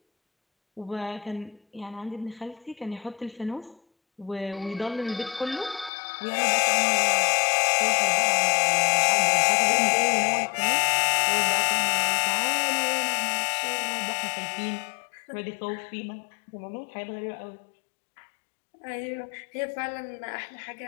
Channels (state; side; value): drops out; right; at 5.9 s